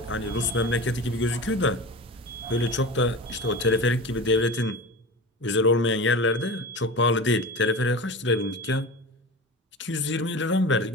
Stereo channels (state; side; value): normal; both; correlation 0.31